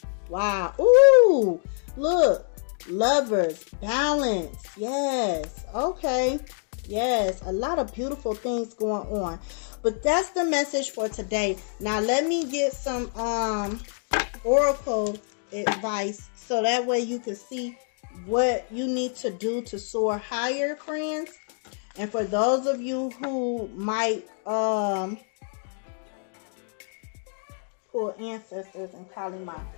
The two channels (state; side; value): silent; right; 61 dB below the other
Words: Wow. Ooh. Look. Lovers. Balance. Yes. Okay. Yes. A lot of beautiful things going on. But that's the message for today. Now let me get some oracle advice so that way you can see what you need to do to soar higher, friends. And for those of you who might pull ancestors and Kali Ma.